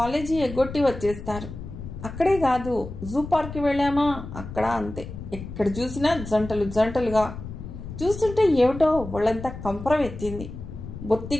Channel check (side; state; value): left; noise; rumble, 10 dB below the sound